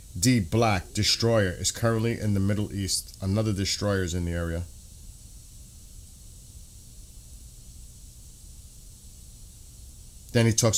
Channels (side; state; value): both; identical; correlation 1.00